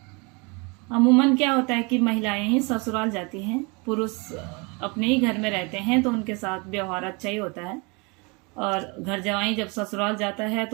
अमूमन क्या होता है कि महिलाएं ही ससुराल जाती हैं, पुरुष अपने ही घर में रहते हैं तो उनके साथ व्यवहार अच्छा ही होता है, और घर जवाई जब ससुराल जाता है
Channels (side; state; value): left; quieter; 29.9 dB